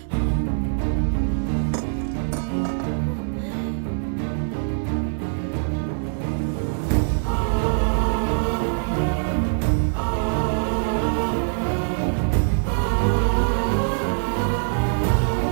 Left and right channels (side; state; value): left; silent; digital silence